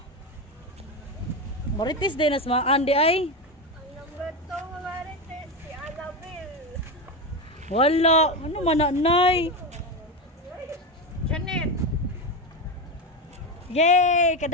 Marites din as mga andi ay. Ang number 2 nga Marites, si Annabel. Wala. Ano mananay? Janet. Yay!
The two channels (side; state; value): both; normal; correlation 0.15